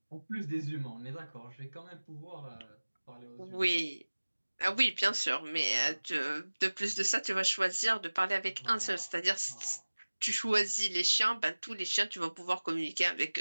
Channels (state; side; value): inverted; both; correlation -1.00